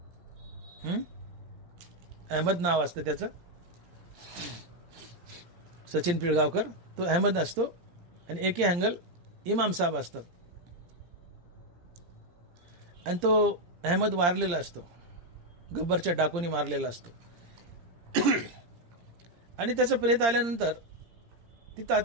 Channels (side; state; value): left; late; 17 ms